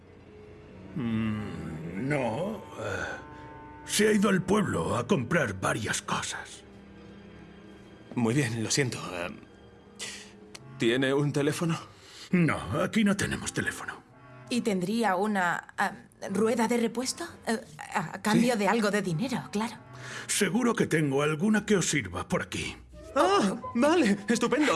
No. Se ha ido al pueblo a comprar varias cosas. Muy bien, lo siento. ¿Tiene un teléfono? No, aquí no tenemos teléfono. ¿Y tendría una rueda de repuesto? A cambio de algo de dinero, claro. Seguro que tengo alguna que os sirva por aquí. ¡Ah! Vale,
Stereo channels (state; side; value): identical; both; correlation 1.00